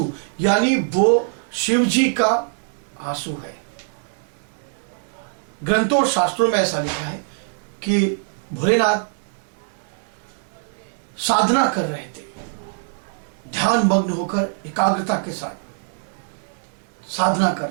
यानी वो शिव जी का आंसू है। ग्रंथों और शास्त्रों में ऐसा लिखा है कि भोलेनाथ साधना कर रहे थे, ध्यान मग्न होकर एकाग्रता के साथ साधना कर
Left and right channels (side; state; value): left; silent; digital silence